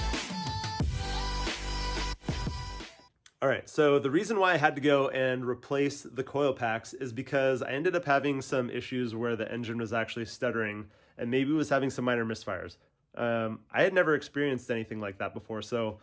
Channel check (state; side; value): identical; both; correlation 1.00